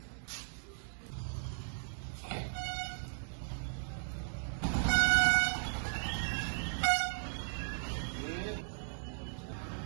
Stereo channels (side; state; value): left; silent; digital silence